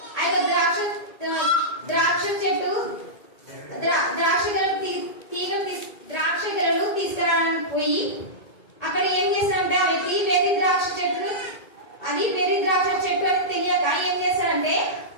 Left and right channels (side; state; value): right; late; 2.2 ms